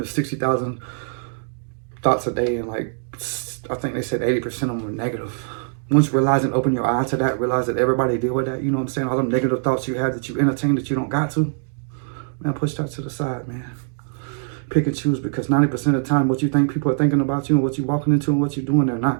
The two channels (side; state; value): left; silent; digital silence